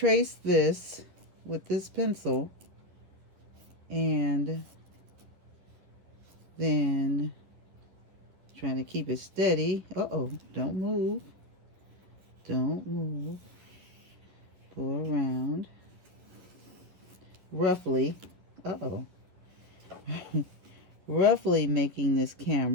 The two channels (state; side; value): late; left; 11 ms